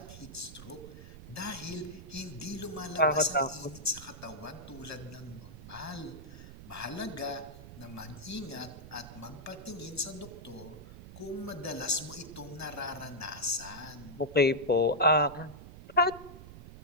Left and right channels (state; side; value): noise; right; rumble, 14 dB below the sound